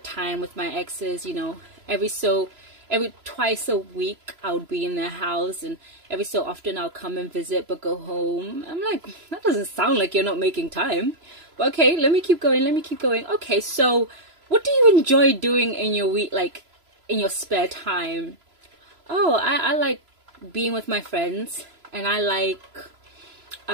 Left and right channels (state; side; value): late; left; 3.0 ms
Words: time with my exes, every twice a week I would be in their house, and every so often I'll come and visit but go home. I'm like, that doesn't sound like you're not making time. But okay, let me keep going. Okay, so what do you enjoy doing in your week, like in your spare time? Oh, I like being with my friends, and I like